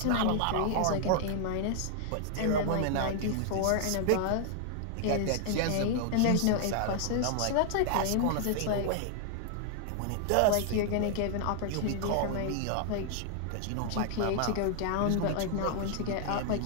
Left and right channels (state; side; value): different; both; correlation 0.00